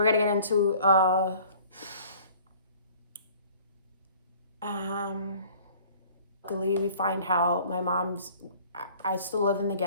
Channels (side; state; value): both; inverted; correlation -0.51